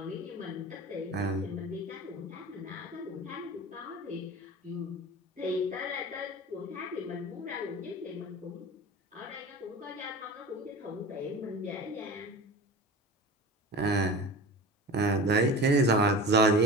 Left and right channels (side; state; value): both; normal; correlation 0.34